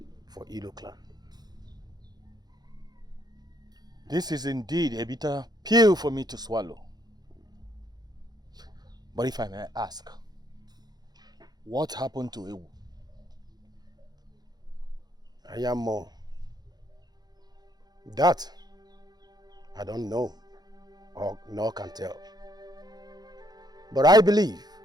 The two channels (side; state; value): left; late; 0.19 ms